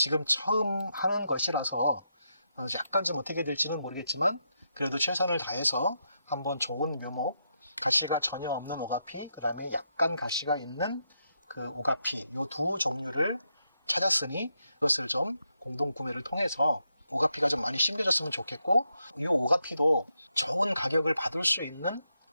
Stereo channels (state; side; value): inverted; both; correlation -0.82